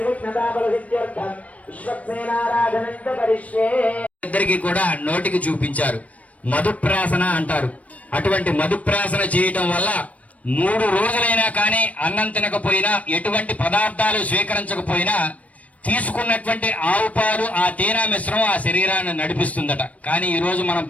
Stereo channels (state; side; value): late; right; 0.068 ms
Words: బలసిద్ధ్యర్థం విశ్వక్సేనారాధనం చ కరిష్యే. ఇద్దరికి కూడా నోటికి చూపించారు. మధుప్రాసన అంటారు. అటువంటి మధుప్రాసన చేయటం వల్ల 3 రోజులైనా కానీ అన్నం తినకపోయినా, ఎటువంటి పదార్థాలు స్వీకరించకపోయినా తీసుకున్నటువంటి ఆవు పాలు, ఆ తేనె మిశ్రమం ఆ శరీరాన్ని నడిపిస్తుందట. కానీ ఈ రోజు మనం